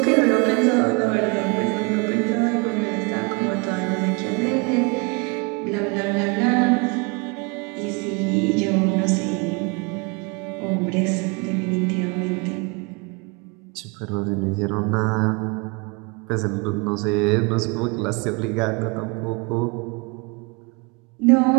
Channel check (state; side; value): quieter; left; 30.3 dB